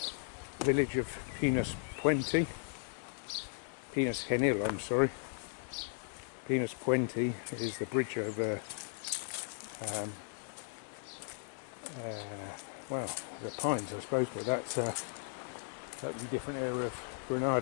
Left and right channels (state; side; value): silent; right; 53 dB below the other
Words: village of Pinos Genil, I'm sorry. Pinos is the bridge over well, the pines, I suppose, but that's a totally different area of